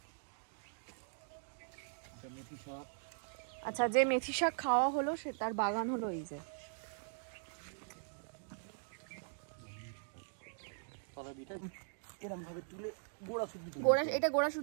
আচ্ছা, যে মেথি শাক খাওয়া হলো সে তার বাগান হলো এই যে। এটা গোড়া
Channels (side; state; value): left; silent; digital silence